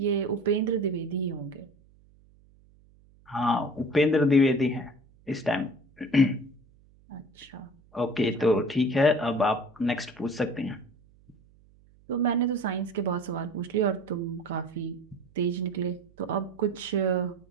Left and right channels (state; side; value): noise; right; hum, 29 dB below the sound